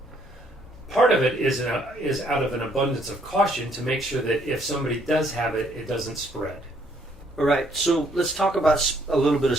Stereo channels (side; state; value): both; normal; correlation 0.67